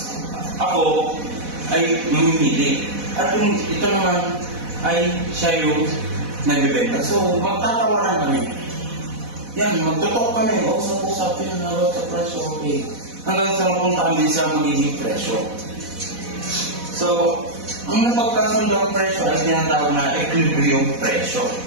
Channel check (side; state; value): left; late; 4.1 ms